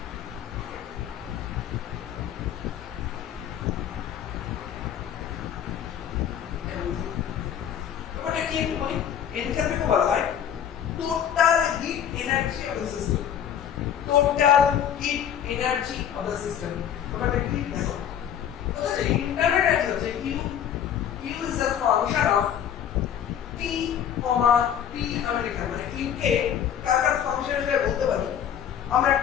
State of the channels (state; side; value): quieter; right; 9.4 dB